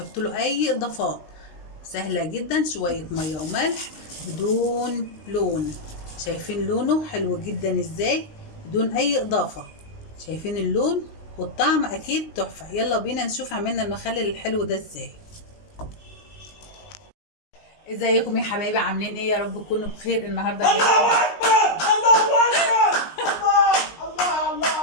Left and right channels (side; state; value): right; late; 19 ms